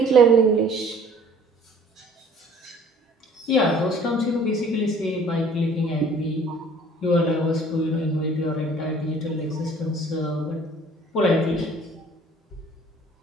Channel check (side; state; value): both; normal; correlation 0.53